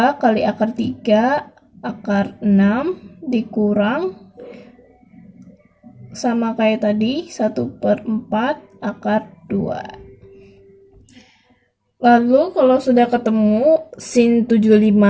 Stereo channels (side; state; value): both; identical; correlation 1.00